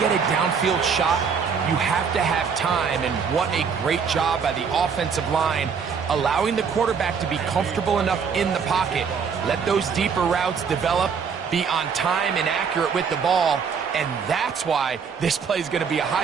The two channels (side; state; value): left; quieter; 6.2 dB